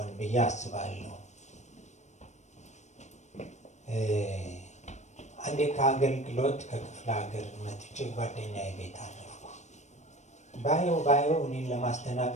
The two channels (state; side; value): late; right; 0.34 ms